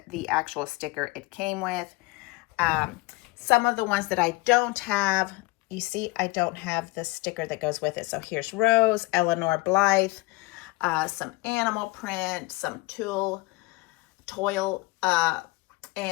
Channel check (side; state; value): right; quieter; 22.5 dB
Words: the actual sticker it came with. Some of the ones that I don't have, you see, I don't have the sticker that goes with it. So here's Rose, Eleanor Blythe, some animal print, some toil,